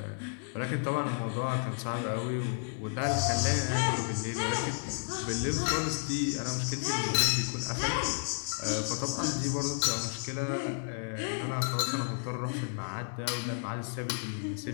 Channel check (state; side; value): silent; right; 56 dB below the other